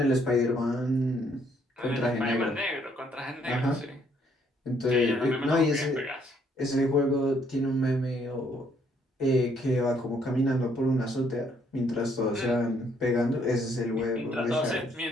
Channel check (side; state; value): both; normal; correlation 0.68